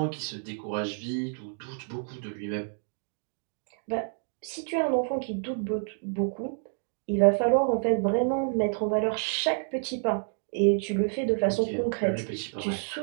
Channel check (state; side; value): silent; left; digital silence